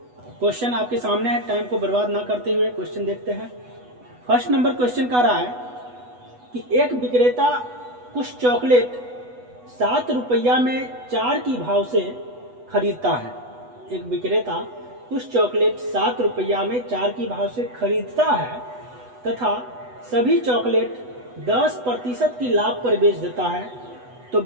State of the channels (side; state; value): left; late; 8.1 ms